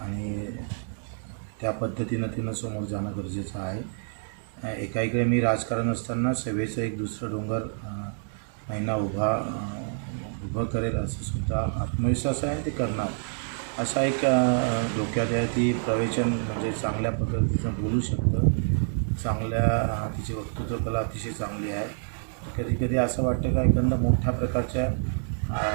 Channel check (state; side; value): silent; left; digital silence